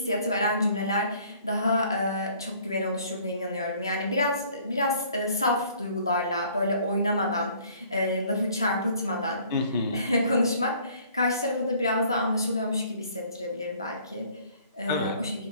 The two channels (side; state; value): both; inverted; correlation -0.57